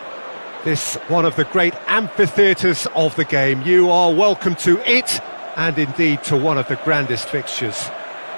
This one of the great amphitheatres of the game. You are welcome to it, and indeed to one of the grandest fixtures.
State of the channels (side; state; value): both; inverted; correlation -1.00